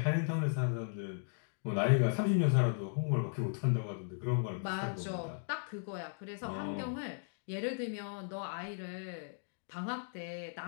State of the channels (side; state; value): right; silent; digital silence